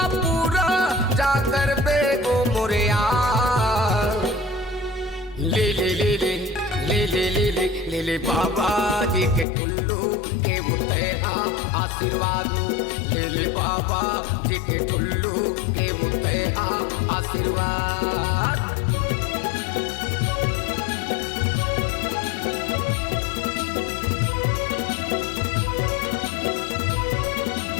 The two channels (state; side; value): drops out; right; at 9.5 s